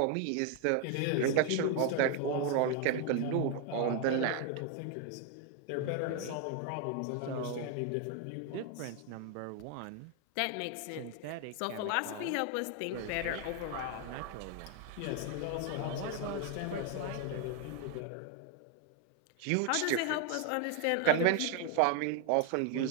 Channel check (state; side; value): different; both; correlation 0.00